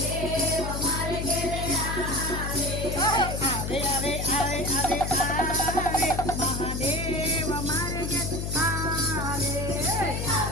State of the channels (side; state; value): left; noise; hum, 4 dB below the sound